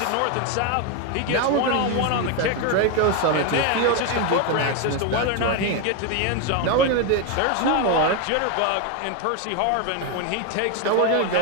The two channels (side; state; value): both; different; correlation 0.02